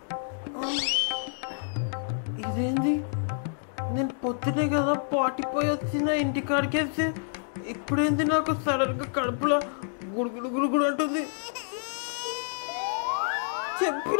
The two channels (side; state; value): right; silent; digital silence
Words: ఇదేంటి నేను పొద్దునే కదా పాటిపోయి వచ్చిన ఇంటికాడికేసి ఇప్పుడేంటి నాకు సడన్గా కడుపులో గుడుగుడు గుడుగుడు అంటుంది.